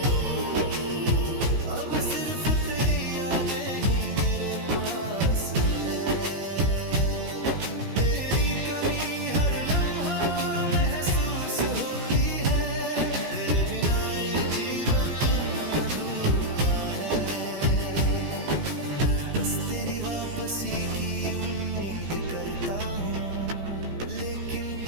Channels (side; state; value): left; late; 16 ms